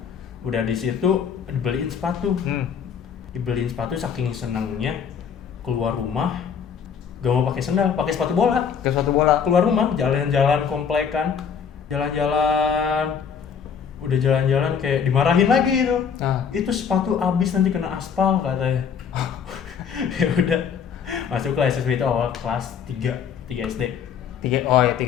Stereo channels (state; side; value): quieter; right; 7.1 dB